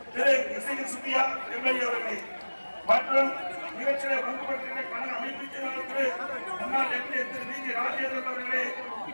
திரு இசையில் சுத்தியா எம்எல்ஏ அவர்களே மற்றும் நிகழ்ச்சியிலே பங்கு பெற்றிருக்கிற கழக அமைப்பு செயலாளர் முன்னாள் எம்எல்ஏ திரு வி. ஜி. ராஜேந்திரன் அவர்களே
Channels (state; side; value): inverted; both; correlation -1.00